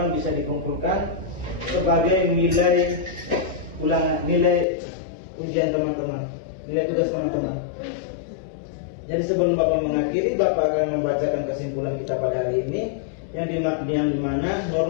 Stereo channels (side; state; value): right; drops out; at 4.7 s